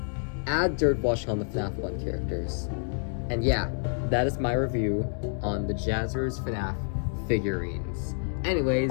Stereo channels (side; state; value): right; silent; 59 dB below the other